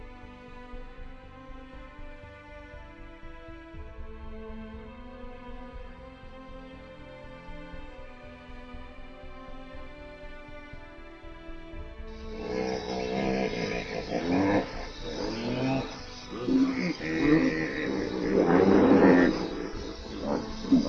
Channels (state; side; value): identical; both; correlation 1.00